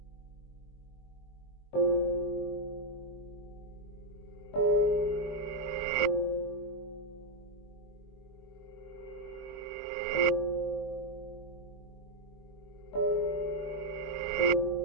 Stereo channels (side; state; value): right; late; 21 ms